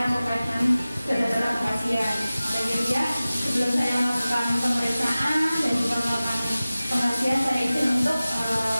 terkait dengan data pasien. Jadi ya, sebelum saya melakukan pemeriksaan dan juga melakukan pengajian, saya izin untuk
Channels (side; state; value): both; inverted; correlation -0.97